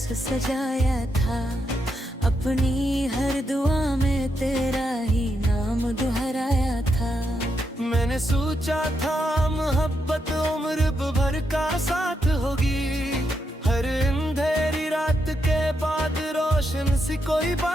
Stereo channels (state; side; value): normal; both; correlation 0.82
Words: सजाया था, अपनी हर दुआ में तेरा ही नाम दोहराया था। मैंने सोचा था मोहब्बत उम्र भर का साथ होगी, हर अंधेरी रात के बाद रोशन सी कोई